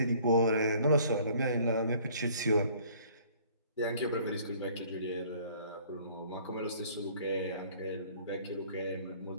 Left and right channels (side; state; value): both; inverted; correlation -0.56